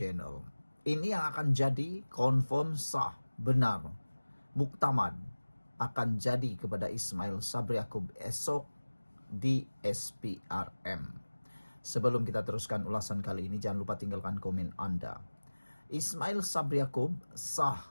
Ini yang akan jadi confirm sah, benar, muktamad akan jadi kepada Ismail Sabri Yaakob esok di SPRM. Sebelum kita teruskan ulasan kali ini, jangan lupa tinggalkan komen Anda. Ismail Sabri Yaakob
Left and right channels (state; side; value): inverted; both; correlation -1.00